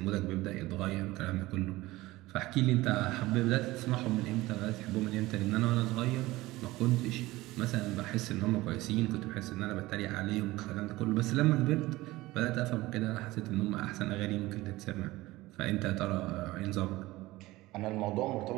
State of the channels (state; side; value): quieter; left; 18.8 dB